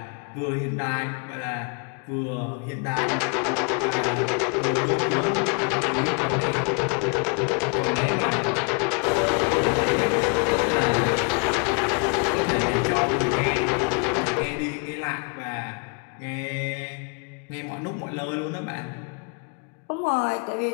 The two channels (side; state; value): right; quieter; 36.8 dB